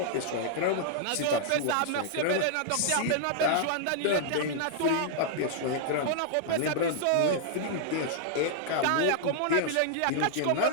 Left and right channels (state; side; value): different; both; correlation -0.01